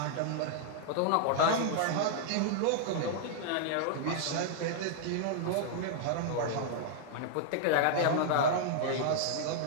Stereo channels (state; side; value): different; both; correlation -0.01